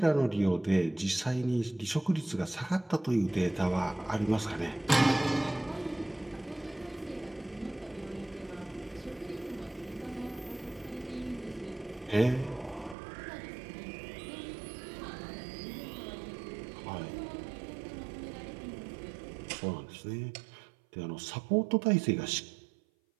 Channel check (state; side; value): drops out; left; at 13.0 s